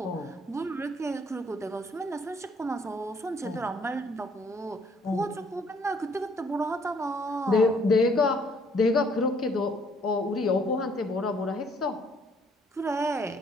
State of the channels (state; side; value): normal; both; correlation 0.64